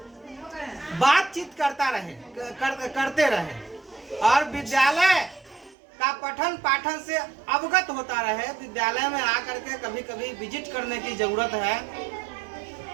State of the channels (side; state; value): left; drops out; at 5.8 s